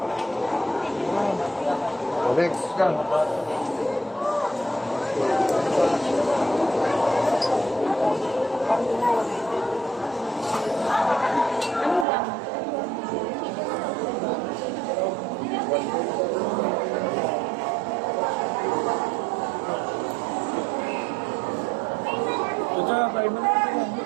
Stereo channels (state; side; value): drops out; left; at 12.1 s